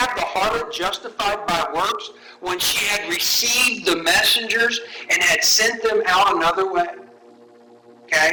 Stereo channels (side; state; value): both; identical; correlation 1.00